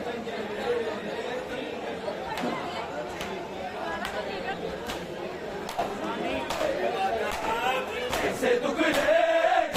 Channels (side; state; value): both; identical; correlation 1.00